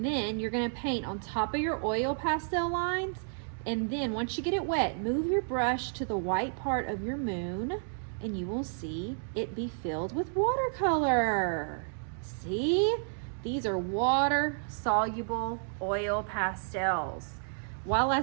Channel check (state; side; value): silent; left; digital silence